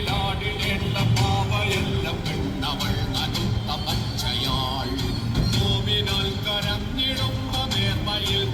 പാവയെല്ലാം പെണ്ണവൾ നനുത്ത പച്ചയാൾ. നോവിനാൽ കരഞ്ഞിടുന്ന നേർമയിൽ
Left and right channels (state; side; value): identical; both; correlation 1.00